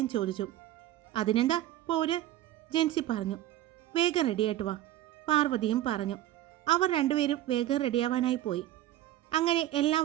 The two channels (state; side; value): quieter; left; 14.0 dB